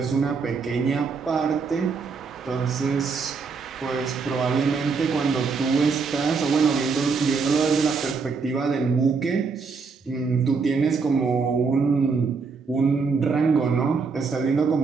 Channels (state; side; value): quieter; left; 4.9 dB